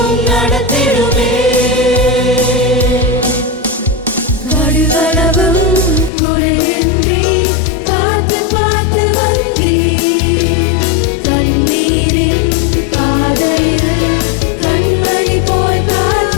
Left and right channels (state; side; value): drops out; right; at 6.1 s